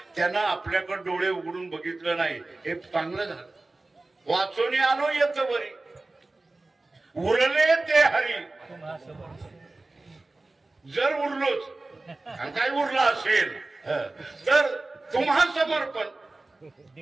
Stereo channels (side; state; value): left; quieter; 3.1 dB